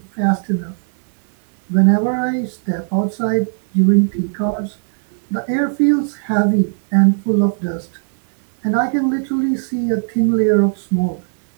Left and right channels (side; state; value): left; silent; digital silence